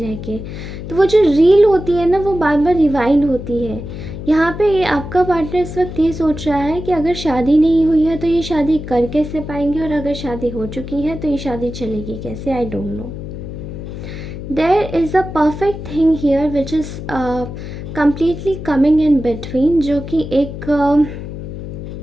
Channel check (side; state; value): left; noise; hum, 9 dB below the sound